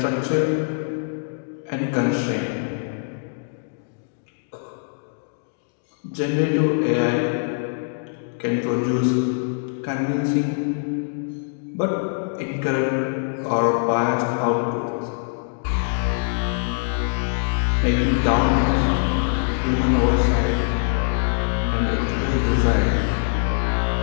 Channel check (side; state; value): right; silent; digital silence